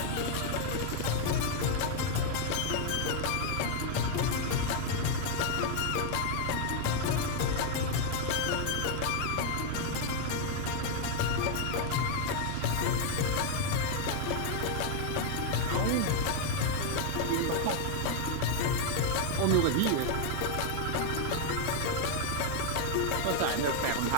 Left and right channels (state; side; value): different; both; correlation 0.00